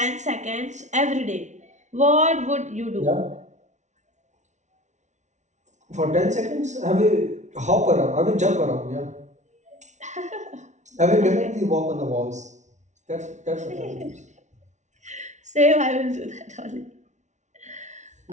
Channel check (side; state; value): left; late; 0.34 ms